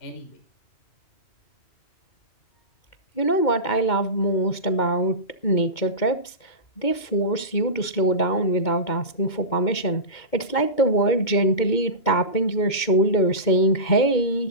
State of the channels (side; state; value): right; late; 2.2 ms